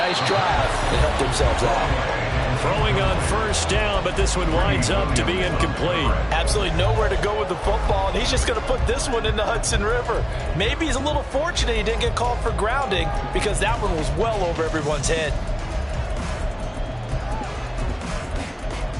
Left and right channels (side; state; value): both; identical; correlation 1.00